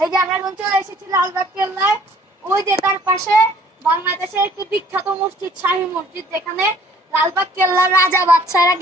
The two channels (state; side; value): normal; both; correlation 0.56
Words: যে আমরা এখন চলে এসেছি লালবাগ কেল্লায়। ওই যে তার পাশে বাংলাদেশের একটি বিখ্যাত মসজিদ, শাহী মসজিদ, যেখানে লালবাগ কেল্লার রাজা বাদশারা